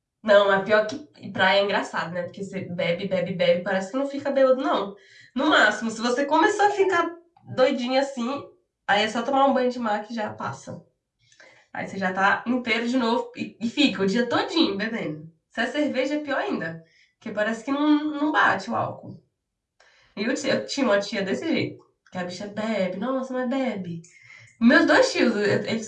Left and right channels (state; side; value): identical; both; correlation 1.00